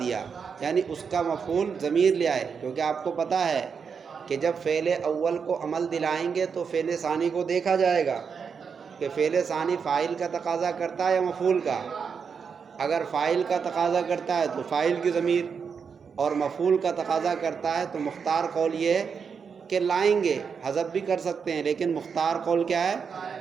یعنی اس کا مفعول ضمیر لے آئے، کیونکہ آپ کو پتہ ہے کہ جب فعل اول کو عمل دلائیں گے تو فعل ثانی کو دیکھا جائے گا کہ فعل ثانی فاعل کا تقاضا کرتا ہے یا مفعول کا۔ اگر فاعل کا تقاضا کرتا ہے تو فاعل کی ضمیر، اور مفعول کا تقاضا کرتا ہے تو مختار قول یہ ہے کہ لائیں گے، حذف بھی کر سکتے ہیں لیکن مختار قول کیا ہے؟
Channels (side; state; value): left; quieter; 6.2 dB